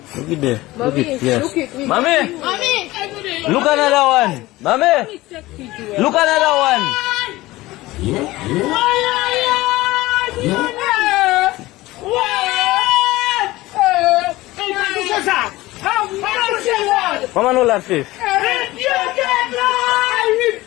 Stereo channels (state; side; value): quieter; right; 18.6 dB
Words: Look it there. Look it. Yes. Look it. Mommy. Look another one. Mommy. Look another one. Yeah. Mama, no laugh face. I